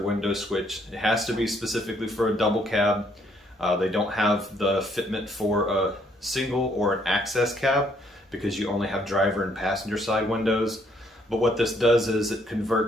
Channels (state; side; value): normal; both; correlation 0.68